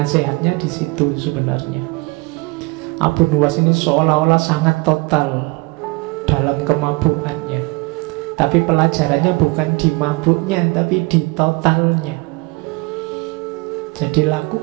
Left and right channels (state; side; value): quieter; left; 26.0 dB